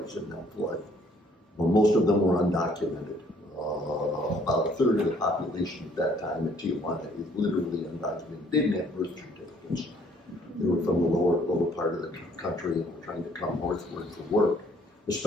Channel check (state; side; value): normal; both; correlation 0.62